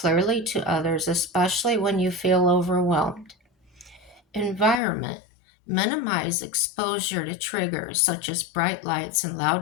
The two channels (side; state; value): right; drops out; at 4.8 s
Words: to others, especially when you feel overwhelmed. Environment. Minimize exposure to triggers such as bright lights and